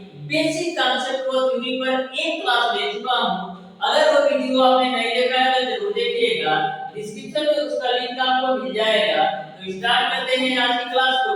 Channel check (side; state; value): both; identical; correlation 1.00